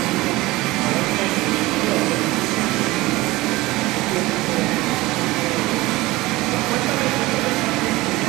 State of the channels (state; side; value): quieter; left; 19.8 dB